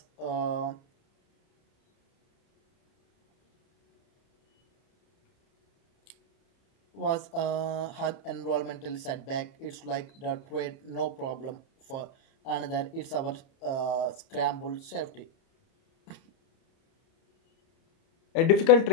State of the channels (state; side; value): late; right; 30 ms